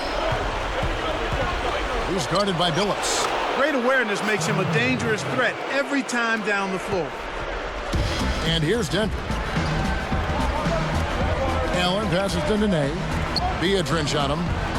He's guarded by Billups. Great awareness makes him a dangerous threat every time down the floor. And here's Denver. Allen passes to Nene. Biedrins on him.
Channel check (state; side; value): identical; both; correlation 1.00